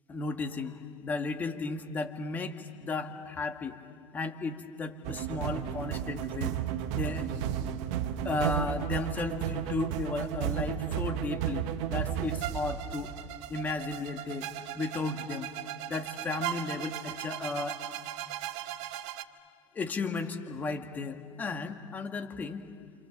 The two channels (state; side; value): normal; both; correlation 0.35